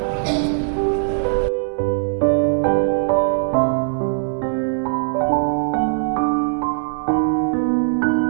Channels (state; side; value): silent; left; 61 dB below the other